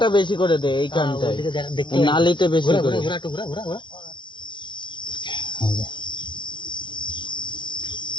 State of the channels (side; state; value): right; late; 0.23 ms